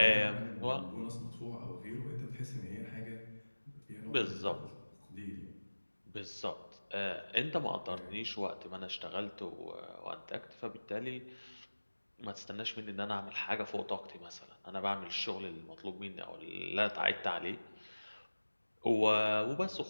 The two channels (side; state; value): both; inverted; correlation -1.00